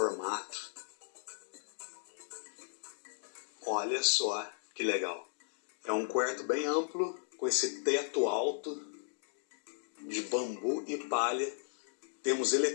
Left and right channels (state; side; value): silent; right; digital silence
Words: Olha só que legal. É um quarto bem amplo, com esse teto alto de bambu e palha. Temos